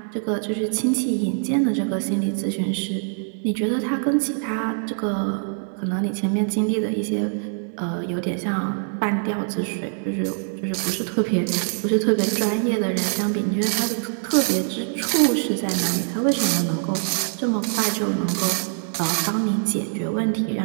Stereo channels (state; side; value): silent; left; digital silence